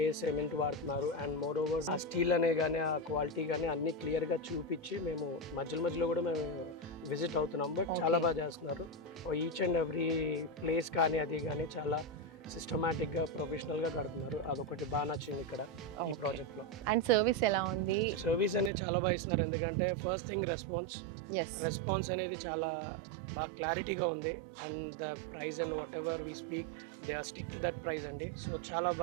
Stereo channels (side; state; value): left; drops out; at 18.7 s